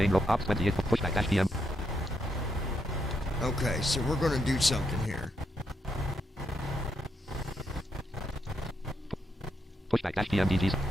row ops 28 pushback dash PM. Okay, so we're going to do something here. Pushback dash PM DGs.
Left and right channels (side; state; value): both; normal; correlation 0.79